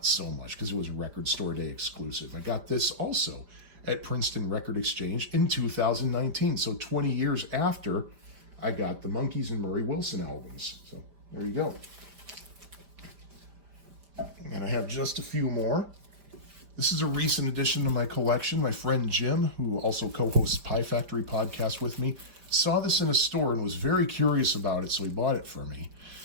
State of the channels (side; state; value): left; late; 5.0 ms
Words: so much, because it was Record Store Day exclusive. I got this also at Princeton Record Exchange in 2019, so 20 years after I got the Monkees and Murray Wilson albums. So there you go. And I have just a few more. This is a recent addition to my collection. My friend Jim, who also co-hosts Pie Factory podcast with me, saw this in a store and was very curious about it, so he bought it for me.